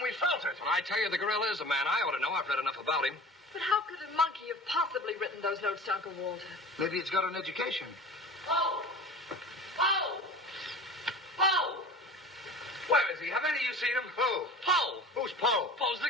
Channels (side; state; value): both; normal; correlation 0.38